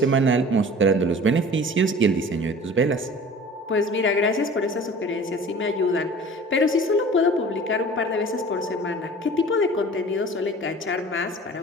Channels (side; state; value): both; normal; correlation 0.43